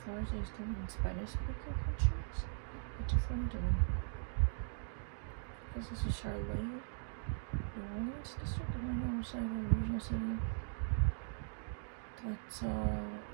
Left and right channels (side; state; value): left; silent; digital silence